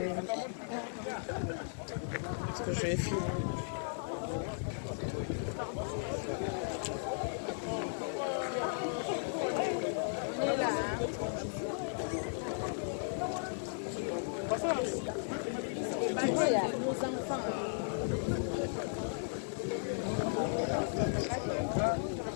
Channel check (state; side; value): silent; right; digital silence